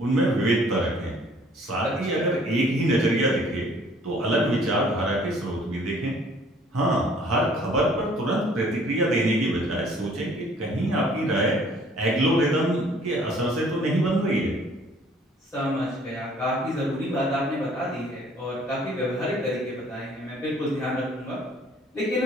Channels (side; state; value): both; normal; correlation 0.57